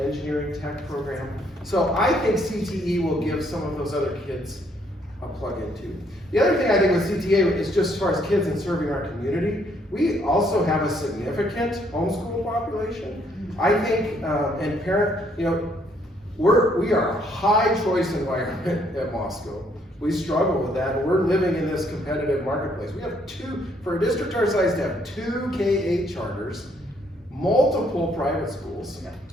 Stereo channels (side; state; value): both; normal; correlation 0.68